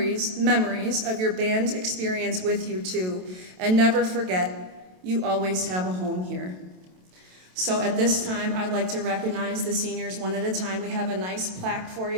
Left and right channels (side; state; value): left; late; 27 ms